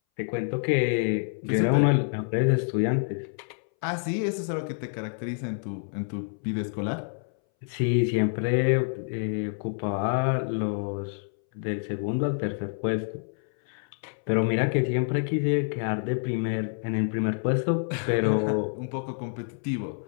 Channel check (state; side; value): silent; right; 60 dB below the other